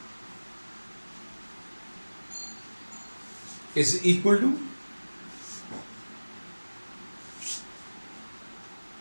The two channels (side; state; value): both; inverted; correlation -1.00